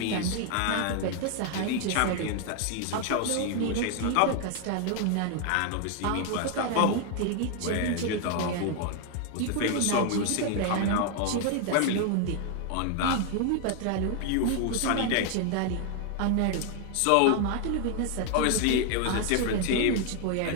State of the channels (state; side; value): different; both; correlation 0.00